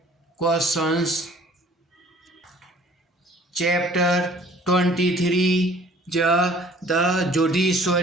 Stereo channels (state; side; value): normal; both; correlation 0.53